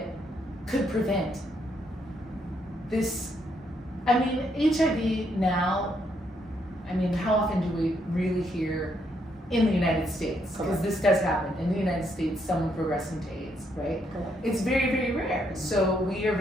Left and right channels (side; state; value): both; normal; correlation 0.75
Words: could prevent this. I mean, HIV now, how often do we really hear in the United States? Because this does happen. In the United States, someone progressing to AIDS, right? Correct. It's very, very rare. So we are